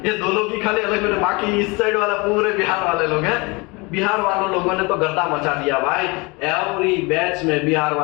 ये 2 लोग ही खाली अलग बैठे, बाकी इस साइड वाला पूरे बिहार वाले लोग हैं। बिहार वालों लोगों ने तो गर्दा मचा दिया भाई। एवरी बैच में बिहार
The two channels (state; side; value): quieter; right; 26.9 dB